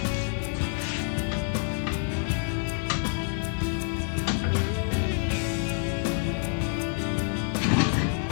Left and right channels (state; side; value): silent; right; 60 dB below the other